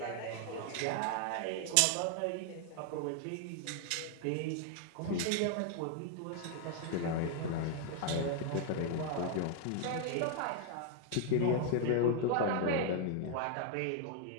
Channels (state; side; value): different; both; correlation 0.00